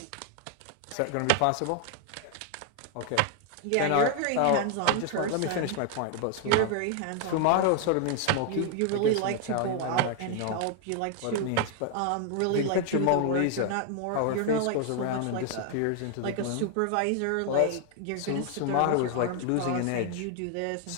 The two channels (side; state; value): both; different; correlation 0.00